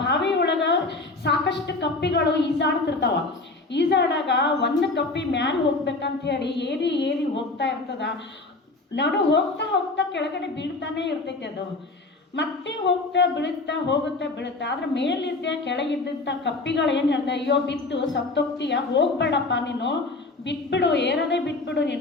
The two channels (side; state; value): right; quieter; 3.3 dB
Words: ಬಾವಿ ಒಳಗ ಸಾಕಷ್ಟು ಕಪ್ಪಿಗಳು ಈಜಾಡ್ತಿರ್ತಾವ. ಈಜಾಡಾಗ ಒಂದು ಕಪ್ಪಿ ಮ್ಯಾಲೆ ಹೋಗ್ಬೇಕಂತ ಹೇಳಿ ಏರಿ ಹೋಗ್ತಾ ಇರ್ತದ. ನಾನು ಹೋಗ್ತಾ ಕೆಳಗಡೆ ಬೀಳ್ತಾನೆ ಇರ್ತೈತಿ. ಅದು ಮತ್ತೆ ಹೋಗ್ತಾ ಬೀಳುತ್ತಾ ಆದ್ರೆ ಮೇಲಿದ್ದೆ ಕೆಳಗಿದ್ದಂಥ ಕಪ್ಪಿಗಳು ಏನು ಹೇಳ್ದೆ, ಅಯ್ಯೋ ಬಿದ್ದು ಸತ್ತೋಗ್ತೀಯ, ಹೋಗ್ಬೇಡಪ್ಪ ನೀನು, ಬಿಟ್ಬಿಡು, ಏರದೇ ಬಿಟ್ಬಿಡು